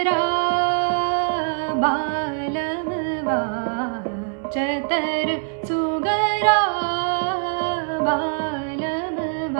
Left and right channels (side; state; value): left; silent; digital silence